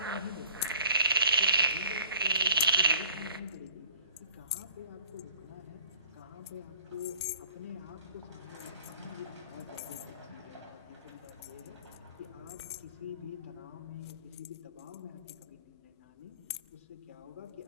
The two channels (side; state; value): both; inverted; correlation -0.52